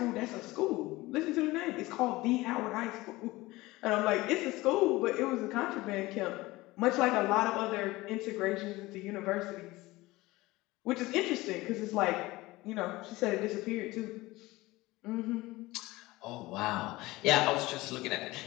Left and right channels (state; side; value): quieter; right; 19.8 dB